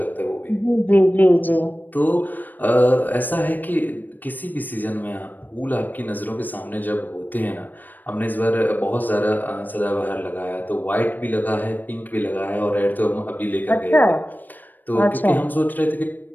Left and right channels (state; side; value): late; right; 0.088 ms